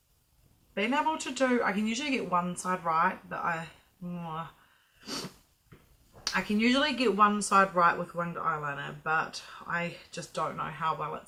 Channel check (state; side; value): identical; both; correlation 1.00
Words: been able to do, I can usually get one side right, but I can usually get one side right with winged eyeliner, but I just don't know how well